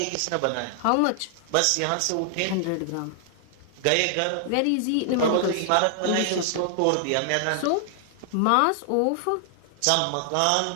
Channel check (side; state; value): both; different; correlation 0.00